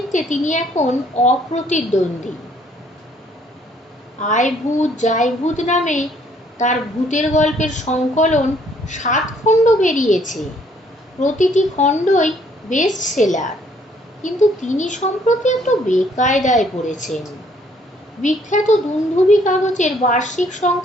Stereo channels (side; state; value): both; normal; correlation 0.64